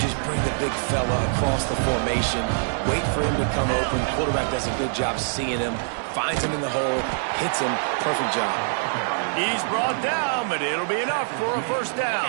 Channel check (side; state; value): left; silent; 58 dB below the other